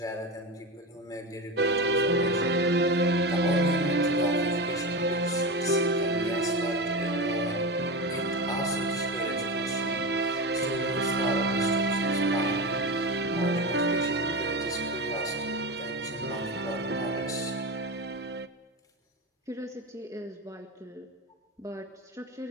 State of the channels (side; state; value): both; normal; correlation 0.21